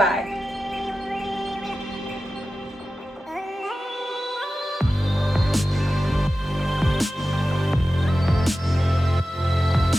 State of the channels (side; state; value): both; normal; correlation 0.93